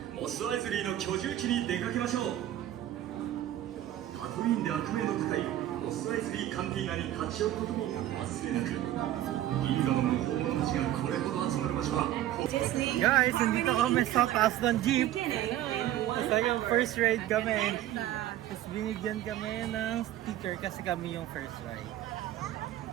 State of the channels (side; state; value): left; quieter; 13.1 dB